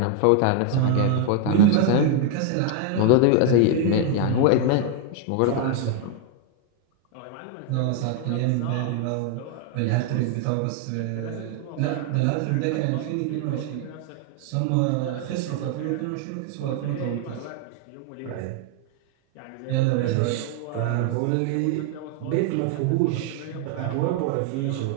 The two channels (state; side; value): different; both; correlation 0.00